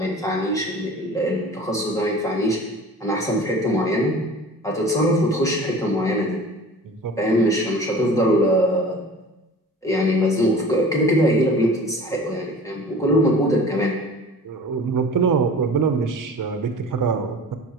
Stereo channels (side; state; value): both; normal; correlation 0.41